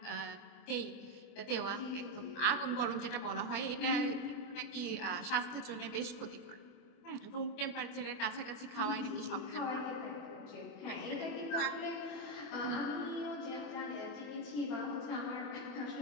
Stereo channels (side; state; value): right; late; 24 ms